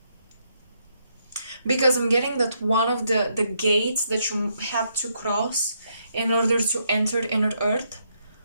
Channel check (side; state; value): both; inverted; correlation -0.76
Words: Because I'm getting that one of the gates that you had to cross in order to enter inner earth